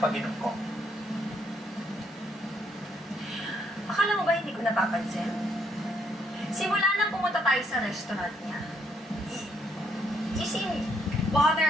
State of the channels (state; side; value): normal; both; correlation 0.72